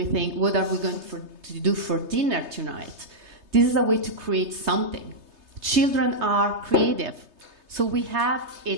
think, what are we going to do for dinner tonight? This is a way to create something. Children are creative. So we have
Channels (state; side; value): late; left; 3.3 ms